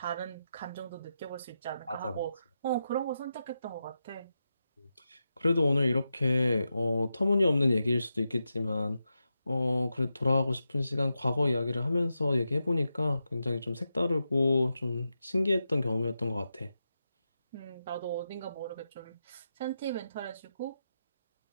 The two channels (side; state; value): both; inverted; correlation -0.88